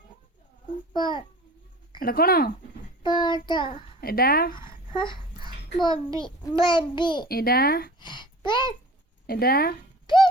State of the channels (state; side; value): normal; both; correlation 0.42